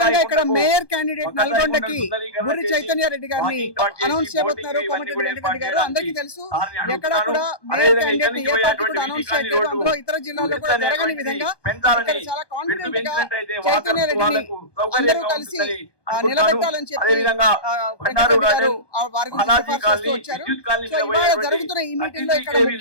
ఇక్కడ మేయర్ క్యాండిడేట్ నల్గొండకి బుర్రి చైతన్య రెడ్డి గారిని అనౌన్స్ చేయబోతున్నారు కోమటిరెడ్డి వెంకటరెడ్డి గారు. అందరికీ తెలుసు, ఎక్కడ కూడా మేయర్ క్యాండిడేట్ ఏ పార్టీ కూడా అనౌన్స్ చేయలేదు. అందులో ఇతర జిల్లాల్లో కూడా జరగని విధంగా ఇక్కడ చాలా కాన్ఫిడెంట్ గా చైతన్య రెడ్డిని అందరూ కలిసి నిలబెట్టాలని చెప్పి వెంకటరెడ్డి గారు వారి గురించి సిఫార్సు చేస్తూ వచ్చారు. సో ఇవాళ జరుగుతున్న ఈ మీటింగ్ లో ఇక్కడ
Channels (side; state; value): right; late; 1.2 ms